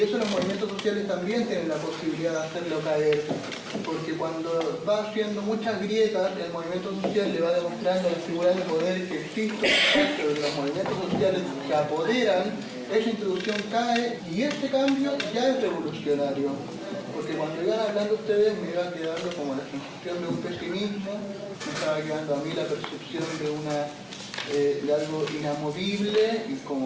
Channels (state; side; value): identical; both; correlation 1.00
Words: eso los movimientos sociales también tienen la posibilidad de hacerlo caer, porque cuando va haciendo muchas grietas, el movimiento social le va demostrando a las figuras de poder que existen, pero los movimientos sociales se apoderan, esa institución cae y este cambio ya es revolucionario. Porque cuando iban hablando ustedes me iba quedando como la sensación de un pesimismo, me estaba quedando a mí la percepción de algo inamovible, y